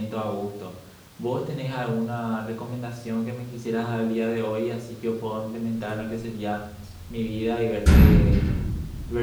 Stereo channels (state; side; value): identical; both; correlation 1.00